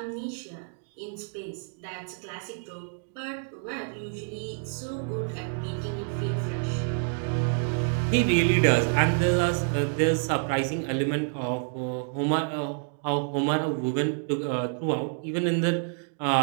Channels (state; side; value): silent; left; 59 dB below the other